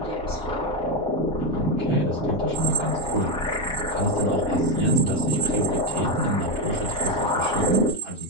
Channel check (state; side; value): normal; both; correlation 0.06